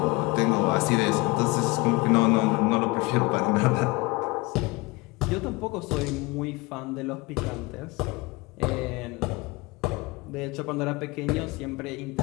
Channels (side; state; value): right; quieter; 23.4 dB